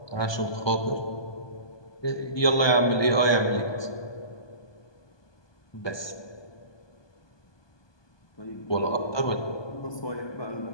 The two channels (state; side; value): late; right; 1.2 ms